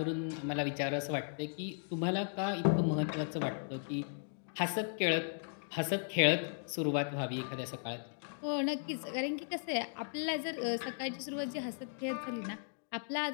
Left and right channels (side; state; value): right; silent; digital silence